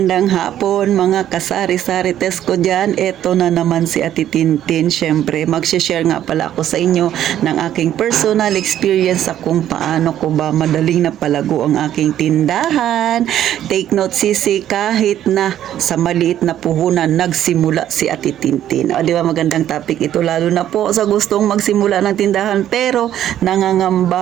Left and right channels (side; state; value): left; quieter; 11.4 dB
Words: hapon mga kasari-sarites ko dyan. Ito na naman si Ate Tintin. Siyempre, mag-share nga pala ako sa inyo ng aking personal experience sa kung paano ko ba madaling napalago ang aking tindahan. Take note sisi, kahit na sa maliit na puhunan nagsimula si Ate Tintin. O di ba magandang topic ito, lalo na po sa gustong magsimula ng tindahan pero